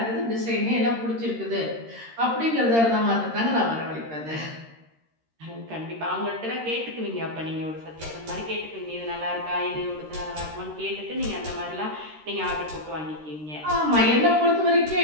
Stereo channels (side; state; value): left; late; 13 ms